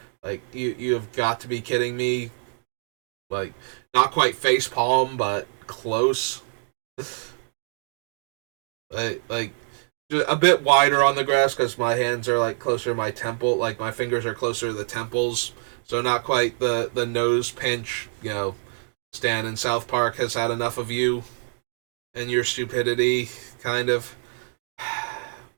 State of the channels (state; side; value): silent; left; 62 dB below the other